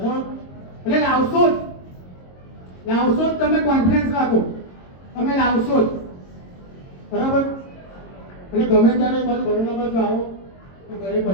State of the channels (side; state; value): right; late; 22 ms